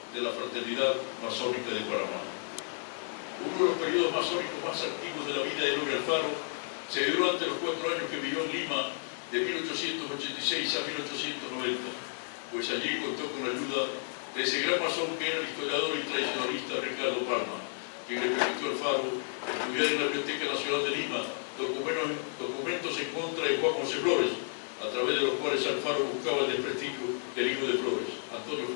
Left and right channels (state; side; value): silent; right; digital silence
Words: de la Fraternidad Masónica de Panamá. Uno de los periodos masónicos más activos de la vida de Eloy Alfaro se dio durante los 4 años que vivió en Lima, de 1886 a 1890, pues allí contó con la ayuda de ese gran masón que era el historiador y tradicionalista Ricardo Palma, quien le permitió a Alfaro estudiar en la Biblioteca Nacional de Lima documentos en contra de Juan José Flores, a través de los cuales Alfaro buscaba el desprestigio del hijo de Flores, Antonio